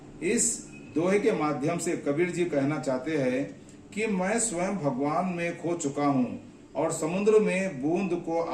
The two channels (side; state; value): both; identical; correlation 1.00